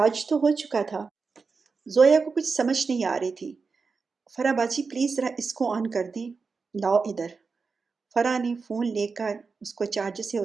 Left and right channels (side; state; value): left; quieter; 4.8 dB